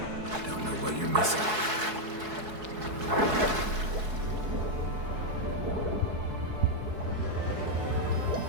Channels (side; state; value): left; late; 4.7 ms